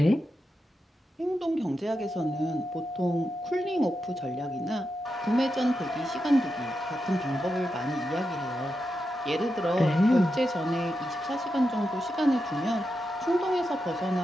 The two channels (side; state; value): both; normal; correlation 0.88